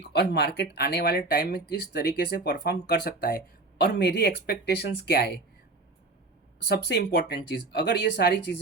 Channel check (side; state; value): left; quieter; 3.2 dB